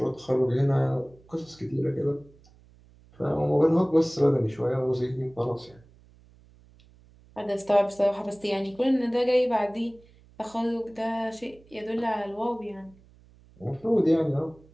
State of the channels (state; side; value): noise; right; hum, 27 dB below the sound